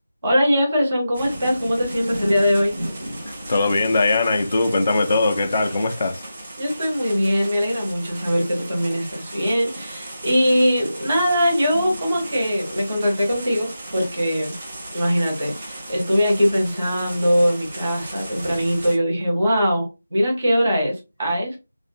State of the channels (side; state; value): both; inverted; correlation -0.91